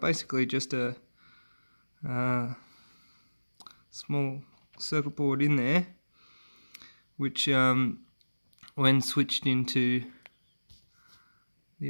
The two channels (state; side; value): inverted; both; correlation -1.00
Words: basically just a small circuit board in there, which when switched into the